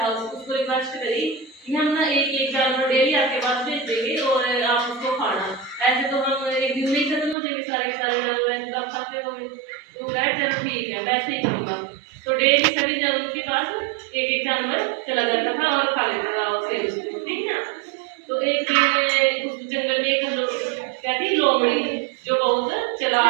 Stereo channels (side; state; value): left; drops out; at 7.4 s